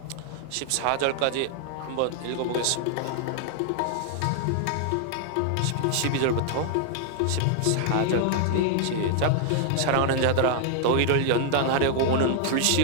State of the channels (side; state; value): both; different; correlation 0.00